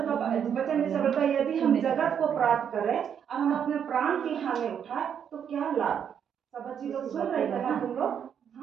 का वचन जैसा बोलता है, यदि हम जगत को प्राप्त करें और हम अपने प्राण की हानि उठाए तो क्या लाभ। सब बच्ची लोग सुन रहे हैं ना, तुम लोग,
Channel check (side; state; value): left; quieter; 8.2 dB